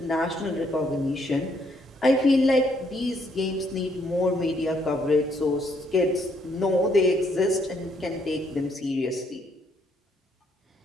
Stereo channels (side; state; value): both; normal; correlation 0.70